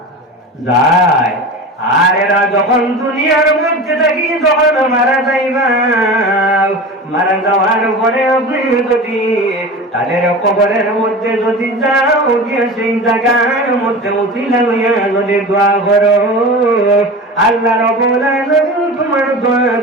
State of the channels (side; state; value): both; normal; correlation 0.31